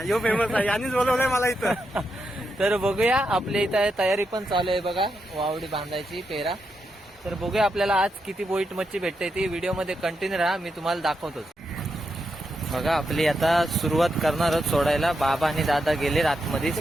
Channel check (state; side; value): normal; both; correlation 0.84